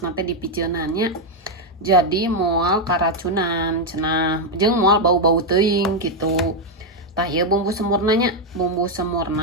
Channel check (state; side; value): normal; both; correlation 0.03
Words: teh dipiceunan nya. Jadi moal karacunan cenah jeung moal bau-bau teuing gitu. Tah ieu bumbu semurna nya, bumbu